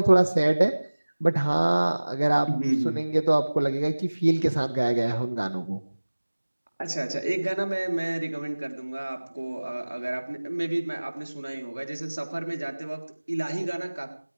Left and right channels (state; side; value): inverted; both; correlation -1.00